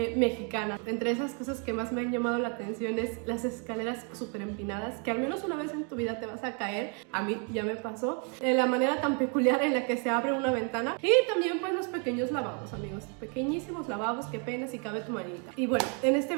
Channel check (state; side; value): quieter; left; 38.2 dB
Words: mexicanas. Entre esas cosas que más me han llamado la atención es las escaleras súper empinadas, que al menos una vez en tu vida te vas a caer. A mí ya me pasó. La manera tan peculiar en la que se abre una ventana, y también pues los pequeños lavabos, amigos, pequeñísimos lavabos que apenas y cabe tu manita. Y bueno, en este